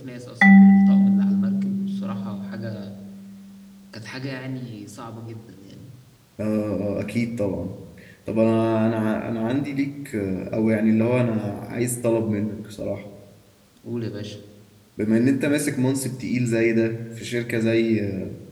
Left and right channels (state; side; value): identical; both; correlation 1.00